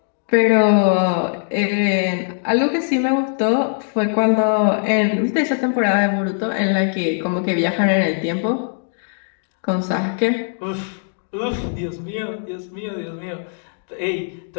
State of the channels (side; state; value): right; silent; 65 dB below the other